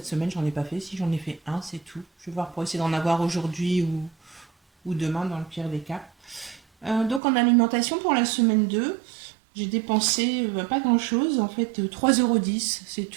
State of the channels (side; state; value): left; drops out; at 7.2 s